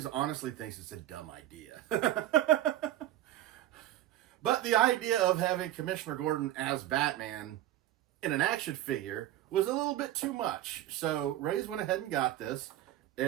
honestly thinks it's a dumb idea. But the idea of having Commissioner Gordon as Batman in an action figure was a little bit too much. So Raze went ahead and got this.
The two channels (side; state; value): left; quieter; 13.5 dB